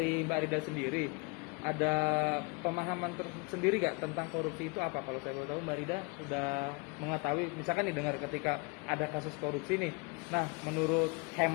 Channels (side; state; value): right; quieter; 29.0 dB